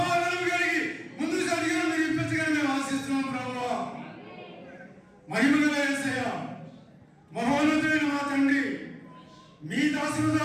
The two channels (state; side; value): identical; both; correlation 1.00